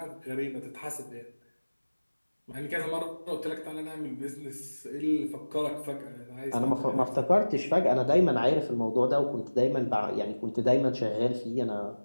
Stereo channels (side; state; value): both; inverted; correlation -1.00